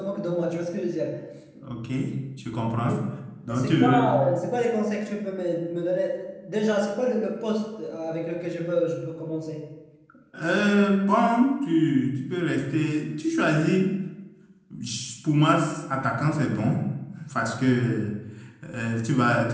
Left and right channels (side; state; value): both; identical; correlation 1.00